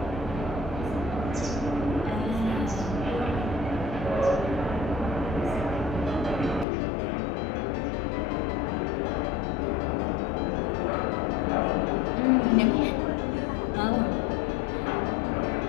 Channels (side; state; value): right; drops out; at 6.7 s